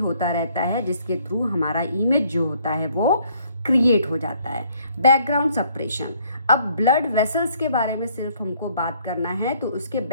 रहता है, जिसके थ्रू हमारा इमेज जो होता है वो क्रिएट हो जाता है। Background suppression. अब ब्लड वेसल्स के बारे में सिर्फ हमको बात करना है तो उसके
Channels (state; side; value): inverted; both; correlation -0.64